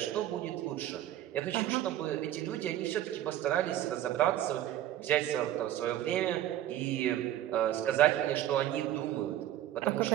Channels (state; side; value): quieter; left; 12.7 dB